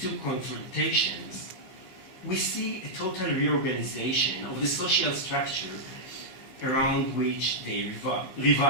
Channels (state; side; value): late; right; 15 ms